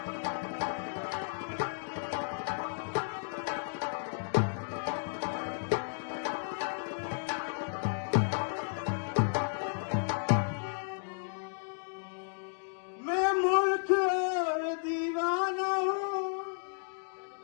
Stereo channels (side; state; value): right; silent; digital silence